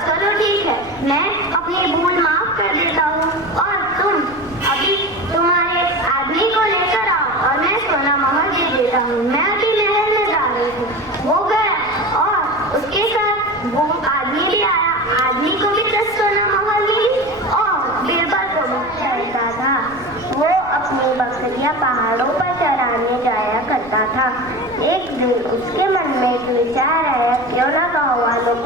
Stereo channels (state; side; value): noise; right; rumble, 21 dB below the sound